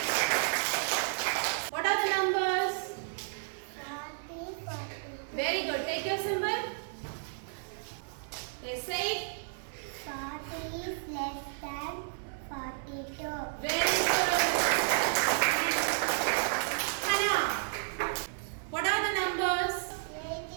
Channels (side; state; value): left; silent; 56 dB below the other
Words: What are the numbers? 40, 42. Very good. Take your symbol. Okay, say it. 40 is less than 42. Very good. Hannah, what are the numbers?